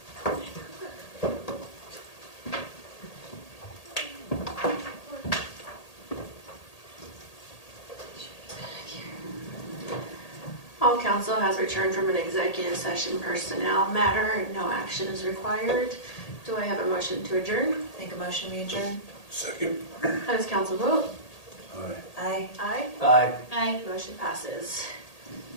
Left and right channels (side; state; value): right; late; 1.8 ms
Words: All council has returned from an executive session personnel matter and no action is required. Do I have a motion to adjourn? Make a motion, we adjourn. Second. How does council vote? Aye. Aye. Aye. Aye. Aye. Motion passes.